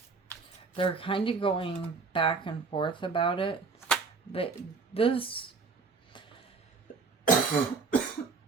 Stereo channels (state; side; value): quieter; left; 4.7 dB